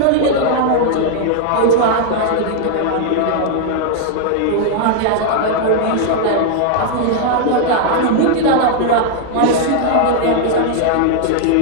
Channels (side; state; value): both; different; correlation -0.01